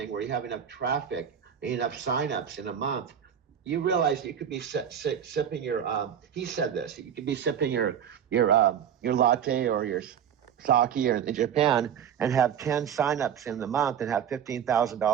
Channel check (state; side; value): quieter; left; 8.6 dB